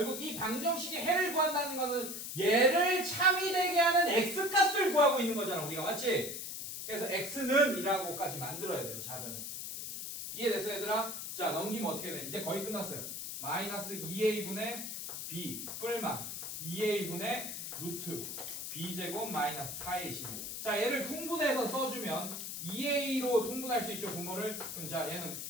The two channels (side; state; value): left; noise; hiss, 6 dB below the sound